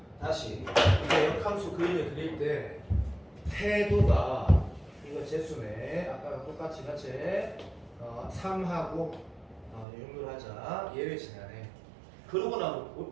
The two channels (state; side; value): drops out; left; at 9.9 s